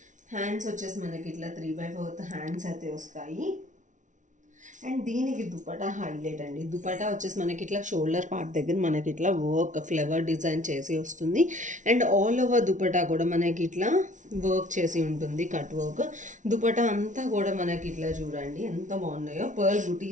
హ్యాండ్స్ వచ్చేసి మనకి ఇట్లా 3/4 హ్యాండ్స్ అయితే వస్తాయి. అండ్ దీనికి దుపటా హైలైట్ అండి. దుపటా వచ్చేసి మనకి ఇట్లా షోల్డర్ పార్ట్ దగ్గర మనకి ఇట్లా వర్క్ ఫ్లవర్ డిజైన్ చేసి వస్తుంది. అండ్ ఆల్ ఓవర్ దుపటా కూడా మనకి ఇట్లా వర్క్ చేసి ఉంటుంది, కట్ వర్క్. దుపటా అంతా కూడా మనకి ఇట్లా చూడండి ఎంత బాగున్నాయో. పర్ల్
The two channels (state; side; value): late; left; 0.37 ms